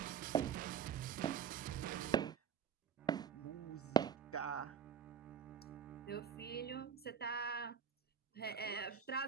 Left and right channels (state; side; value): quieter; left; 7.5 dB